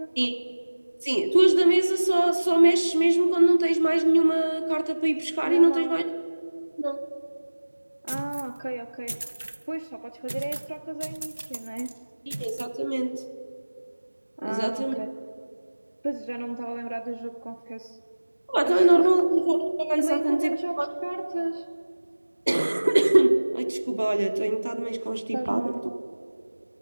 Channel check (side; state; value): both; inverted; correlation -1.00